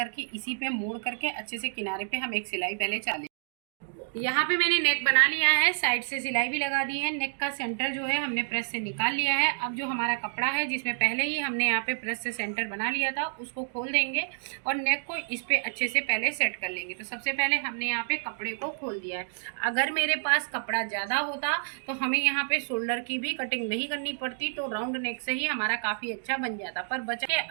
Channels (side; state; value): left; silent; digital silence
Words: इसी पे मोड़ करके अच्छे से किनारे पे हम एक सिलाई पहले चालेंगे। यहाँ पे मैंने नेक बना लिया है, साइड से सिलाई भी लगा दी है। नेक का सेंटर जो है हमने प्रेस से निकाल लिया है। अब जो हमारा कपड़ा है जिसमें पहले ही हमने यहाँ पे प्रेस से सेंटर बना लिया था उसको खोल देंगे और नेक को इस पे अच्छे से पहले सेट कर लेंगे। तो सबसे पहले हमने यहाँ पे कपड़े को खोल दिया है। अगर मेरे पास कपड़ा ज़्यादा होता तो हमें यहाँ पे शोल्डर की भी कटिंग नहीं करनी पड़ती, तो राउंड नेक से ही हमारा काफ़ी अच्छा बन जाता। पर बचा के